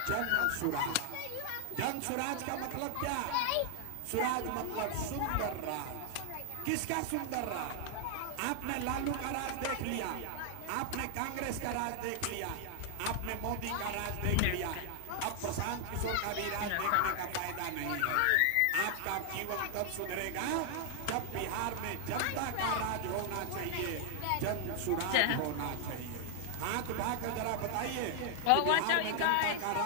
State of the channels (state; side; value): different; both; correlation 0.00